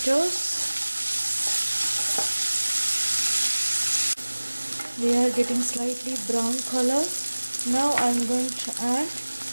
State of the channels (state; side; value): inverted; both; correlation -1.00